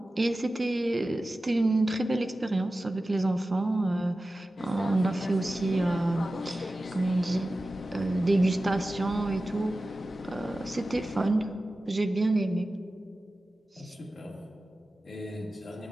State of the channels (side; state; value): both; normal; correlation 0.95